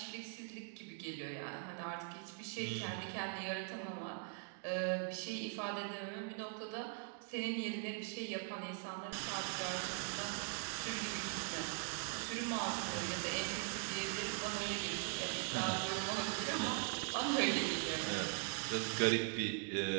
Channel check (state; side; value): silent; left; 50 dB below the other